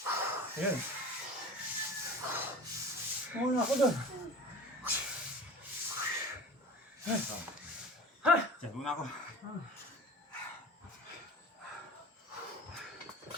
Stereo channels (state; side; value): normal; both; correlation 0.38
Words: Ayan. Muna ako doon. Diyan muna ako.